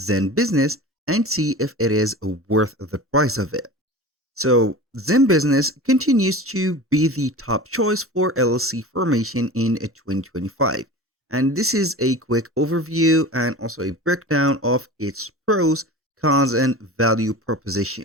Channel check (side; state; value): both; normal; correlation 0.34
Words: and see if it is worth the price of it. So, Zenbusiness continues to be the top choice for LLC formation in 2025. And this is a quick overview and also a breakdown of its pros, cons, and value